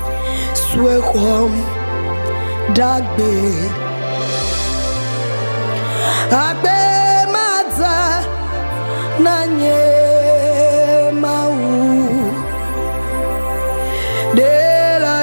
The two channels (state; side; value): inverted; both; correlation -1.00